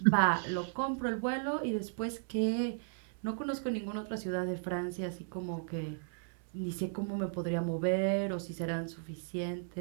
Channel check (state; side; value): silent; left; 54 dB below the other